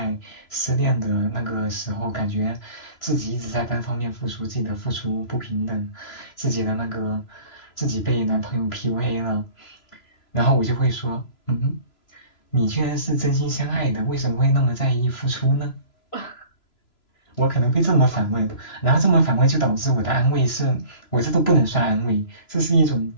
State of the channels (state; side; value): late; right; 3.0 ms